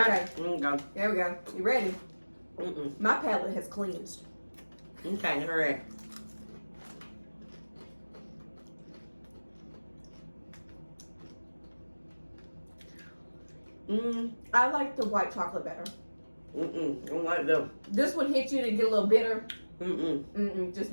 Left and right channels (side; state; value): both; inverted; correlation -1.00